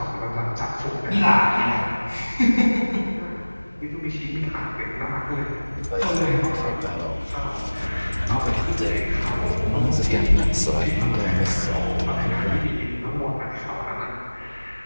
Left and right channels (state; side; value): inverted; both; correlation -1.00